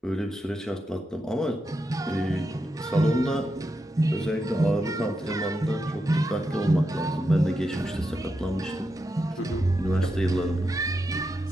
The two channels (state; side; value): normal; both; correlation 0.86